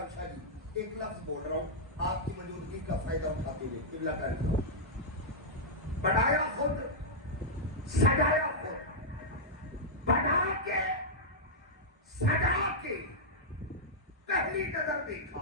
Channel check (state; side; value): normal; both; correlation -0.08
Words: شاہ جی ایک لفظ بول رہا ہوں آپ کی موجودگی کا فائدہ اٹھاتے ہوئے، قبلہ کاری بنایا خود، سجایا خود، بنا کے سجا کے پہلی نظر